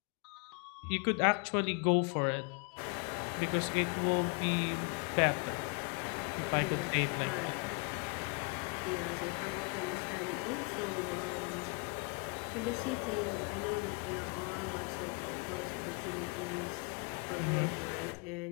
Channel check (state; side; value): quieter; right; 32.9 dB